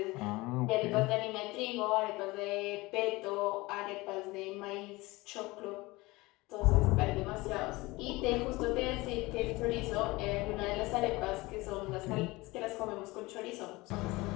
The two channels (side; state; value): right; quieter; 21.8 dB